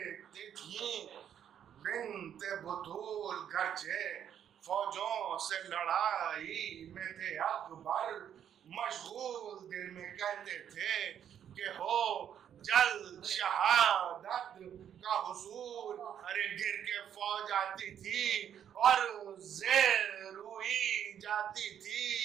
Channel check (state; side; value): quieter; left; 9.3 dB